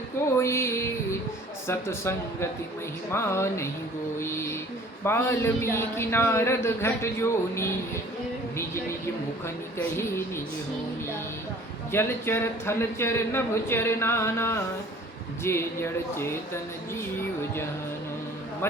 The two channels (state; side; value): normal; both; correlation 0.50